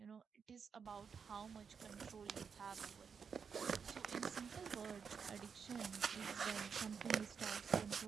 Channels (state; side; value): quieter; left; 6.3 dB